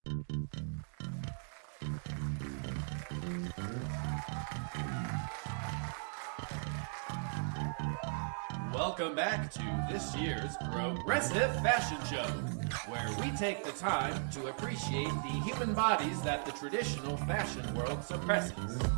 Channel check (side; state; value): left; silent; 53 dB below the other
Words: Welcome back to this year's Progressive Fashion Show, where we take the time to appreciate the human bodies that the traditional fashion world suppresses.